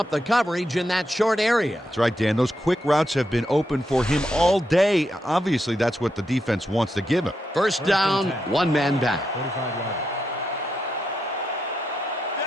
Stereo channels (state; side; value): normal; both; correlation 0.84